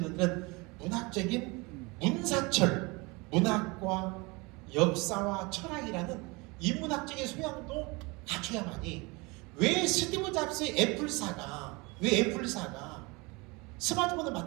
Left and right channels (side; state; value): left; quieter; 26.2 dB